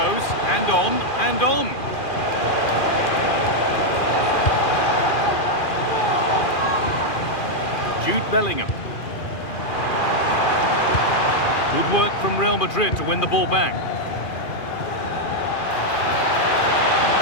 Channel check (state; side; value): late; right; 2.4 ms